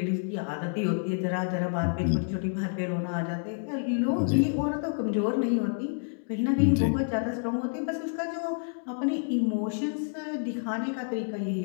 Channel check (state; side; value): silent; right; digital silence